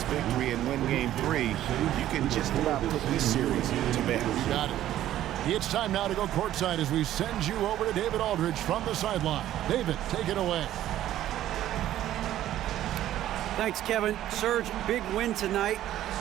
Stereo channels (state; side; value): quieter; left; 12.8 dB